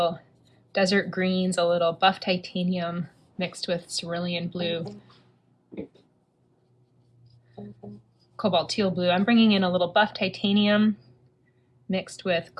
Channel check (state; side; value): identical; both; correlation 1.00